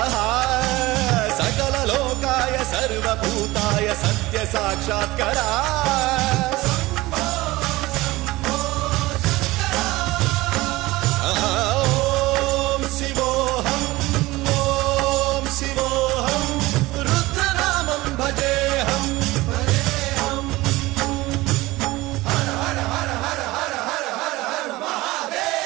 सकललोकाय सर्वभूताय सत्यसाक्षात्करा। ॐ शिवोऽहं रुद्रनामं भजेऽहम्। हर हर हर हर हर हर हर हर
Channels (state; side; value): quieter; left; 19.5 dB